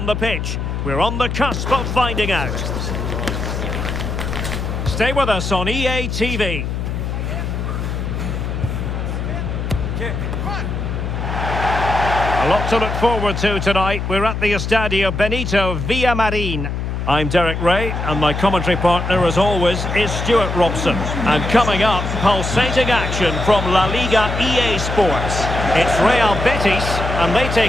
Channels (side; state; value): left; noise; hum, 3 dB below the sound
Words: the pitch? We're on the cusp of finding out. Stay with us on EA TV. A lot to look forward to tonight. We're at the Estadio Benito Villamarin. I'm Derek Ray, and my commentary partner, as always, is Stuart Robson. And coming up, pulsating action from La Liga EA Sports. It's Real Betis, and they